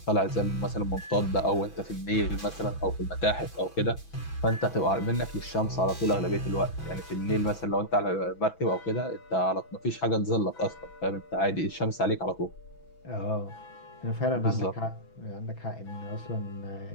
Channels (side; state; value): right; late; 6.1 ms